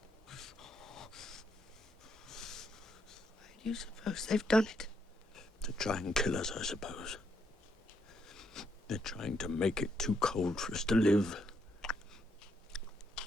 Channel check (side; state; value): both; normal; correlation 0.76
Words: do you suppose they've done it? To try and kill us, I suppose. They're trying to make it too cold for us to live.